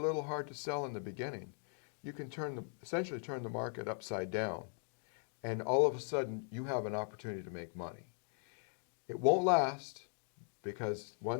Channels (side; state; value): right; silent; 51 dB below the other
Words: hard to sell in the beginning, you can essentially turn the market upside down. And all of a sudden, you have an opportunity to make money. It won't last, because